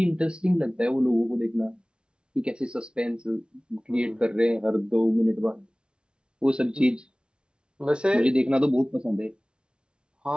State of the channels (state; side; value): late; left; 0.055 ms